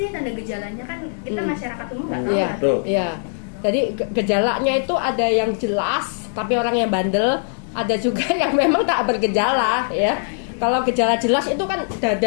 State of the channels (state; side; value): silent; right; digital silence